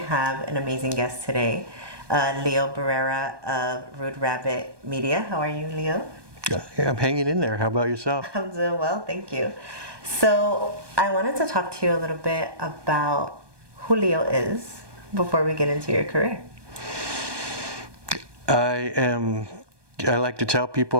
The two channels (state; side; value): late; left; 1.2 ms